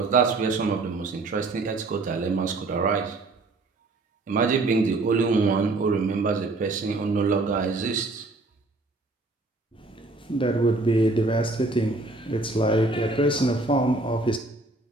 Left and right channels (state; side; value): quieter; left; 3.1 dB